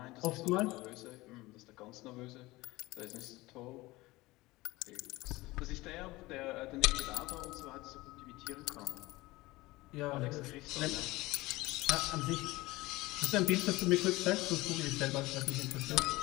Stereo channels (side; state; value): right; quieter; 20.1 dB